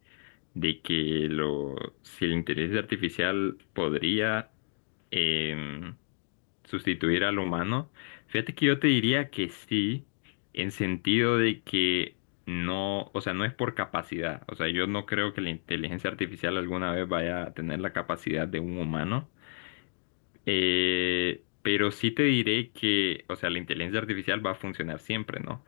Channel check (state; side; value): silent; right; digital silence